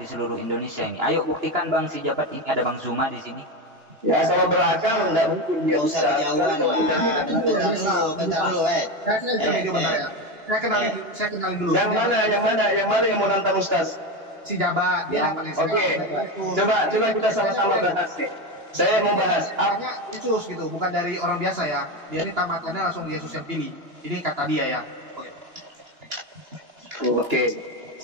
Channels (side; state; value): left; late; 2.9 ms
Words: seluruh Indonesia ini. Ayo buktikan Bang, si jabat ini ada Bang Zuma di sini. Ya, kalau berakal nggak mungkin dia usah kejauhan lah. Bentar dulu. Saya kenalin dulu. Yang mana yang mau nantang Ustaz? Si jabat. Dia Oke. Coba kita sama-sama bahas nih. Saya mau bahas. Artinya Yesus gitu, bukan dari orang biasa ya. Dia ini tamatannya langsung Yesus yang pilih. Ini kata dia ya. Oke.